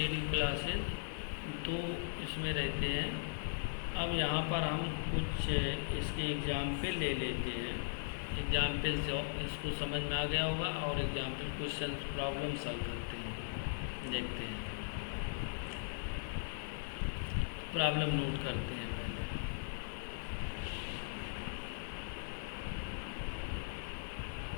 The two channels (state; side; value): silent; right; 52 dB below the other